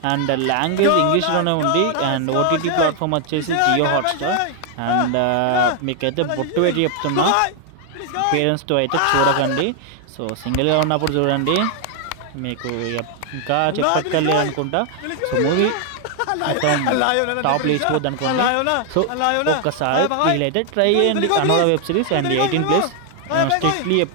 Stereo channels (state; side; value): different; both; correlation 0.00